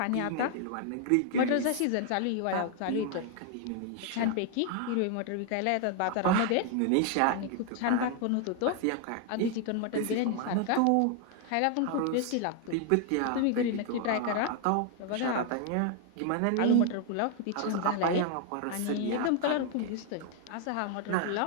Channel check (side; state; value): both; different; correlation 0.00